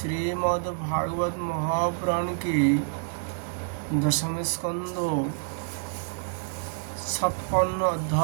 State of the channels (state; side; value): silent; left; digital silence